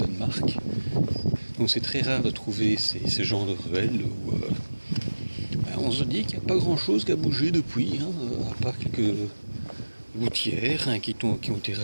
Donc c'est très rare de trouver ces genres de ruelles où on se dit qu'il n'y a pas grand chose qui a bougé depuis, à part quelques gouttières qui ont été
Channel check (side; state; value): both; inverted; correlation -1.00